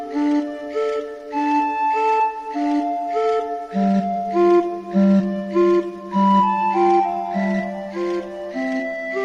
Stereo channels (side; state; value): both; identical; correlation 1.00